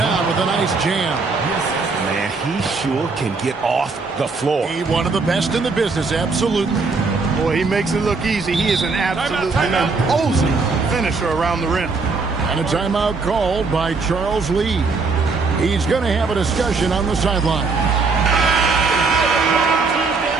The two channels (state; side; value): quieter; left; 4.2 dB